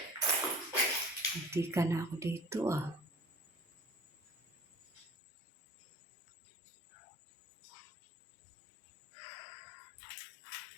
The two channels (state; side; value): drops out; right; at 5.1 s